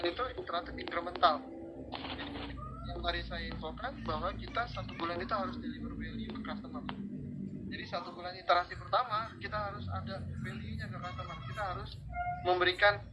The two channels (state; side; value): identical; both; correlation 1.00